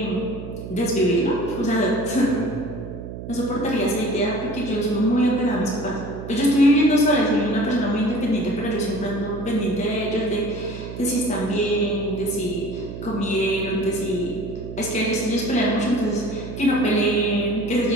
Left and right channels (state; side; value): noise; right; hum, 10 dB below the sound